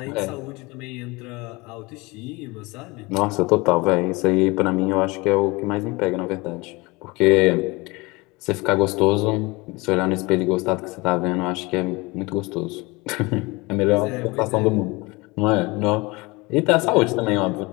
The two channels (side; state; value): right; quieter; 24.4 dB